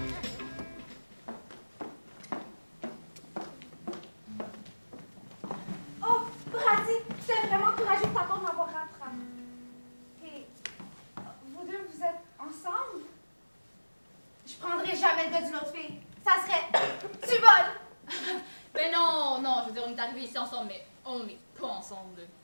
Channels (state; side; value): inverted; both; correlation -1.00